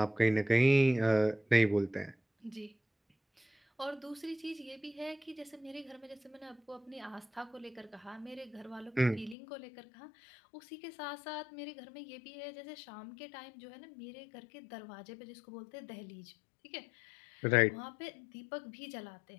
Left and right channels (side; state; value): right; drops out; at 9.3 s